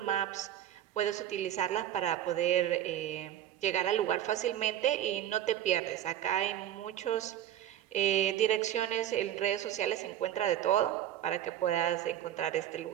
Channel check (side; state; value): left; quieter; 11.5 dB